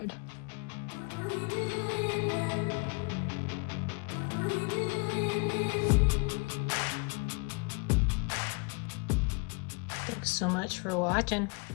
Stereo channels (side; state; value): right; quieter; 32.4 dB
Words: Thanks so much for watching.